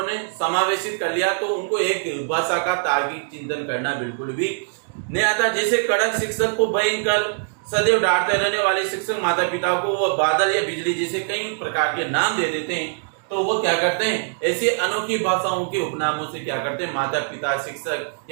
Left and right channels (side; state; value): left; silent; digital silence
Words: समावेशित कर लिया, तो उनको एक भाषा का तार्किक चिंतन करना बिल्कुल भी नहीं आता। जैसे कड़क शिक्षक को भयंकर सदैव डांटते रहने वाले शिक्षक माता पिता को वो बादल या बिजली जैसे कई प्रकार के नाम दे देते हैं, तो वो क्या करते हैं, ऐसे अनोखी भाषाओं के उपनामों से क्या करते हैं, माता पिता, शिक्षक